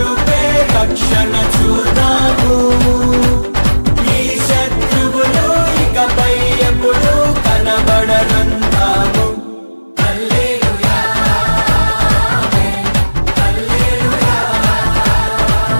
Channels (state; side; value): inverted; both; correlation -1.00